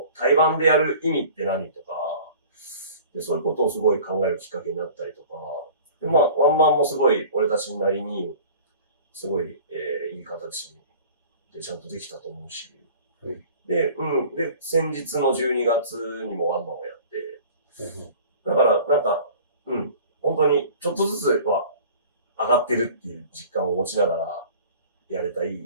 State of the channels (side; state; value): both; inverted; correlation -0.44